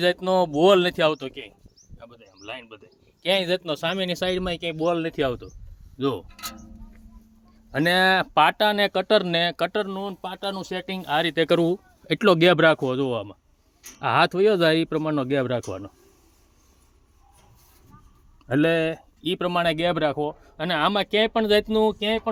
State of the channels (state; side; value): identical; both; correlation 1.00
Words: જાતનો બોલ નથી આવતો ક્યાંય. આ બધે આમ લાઈન બધે ક્યાંય જાતનો સામેની સાઈડમાં ક્યાંય બોલ નથી આવતો. જો અને પાટા ને કટરનું પાટાનું સેટિંગ આ રીતે કરવું. એટલો ગેપ રાખવો. જોવામાં આ હાથ વયો જાય એ પ્રમાણનો ગેપ રાખવાનો, એટલે એ પ્રમાણે ગેપ રાખવો. અને આમાં ક્યાંય પણ જાતનું ક્યાંય